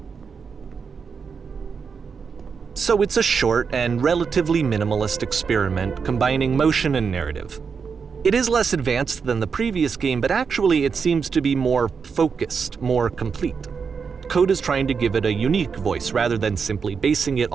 So it's a short and relatively minimalist experiment combining motion and narrative. It is less advanced than the previous game, but actually it seems to be more focused, more complete. Coda's trying to give it a unique voice rather than simply basing it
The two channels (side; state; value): left; quieter; 5.8 dB